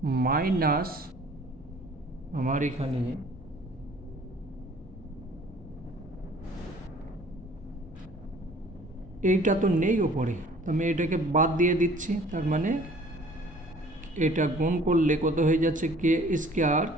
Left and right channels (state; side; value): normal; both; correlation 0.52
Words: মাইনাস আমার এখানে এইটা তো নেই ওপরে, আমি এটাকে বাদ দিয়ে দিচ্ছি। তার মানে এটা গুণ করলে কত হয়ে যাচ্ছে, কে স্কোয়ার